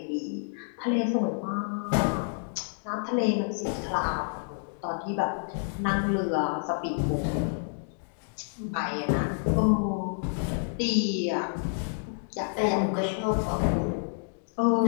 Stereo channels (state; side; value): silent; right; digital silence